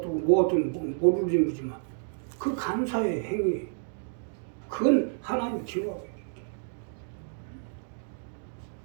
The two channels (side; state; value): left; silent; digital silence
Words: 모르는 거지만 그 감사의 행위, 그건 하나님 기억하고 있는 거예요.